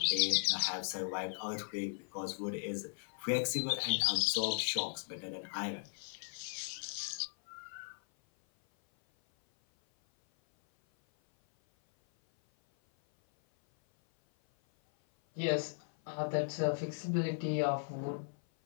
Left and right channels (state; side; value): silent; right; 53 dB below the other